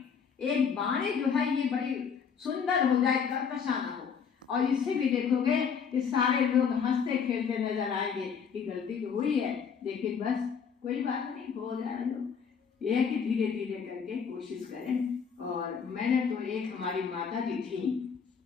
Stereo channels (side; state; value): right; quieter; 6.6 dB